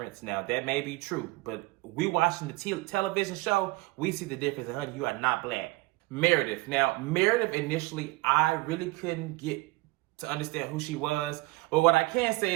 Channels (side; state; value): left; quieter; 21.9 dB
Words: Now, that may be true, but we watching the television show, we see the difference. And honey, you are not black. Meredith. Now, Meredith, initially, I really couldn't get to understand who she was. But what I can say